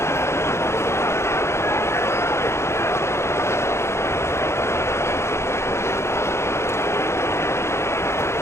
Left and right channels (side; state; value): right; late; 0.13 ms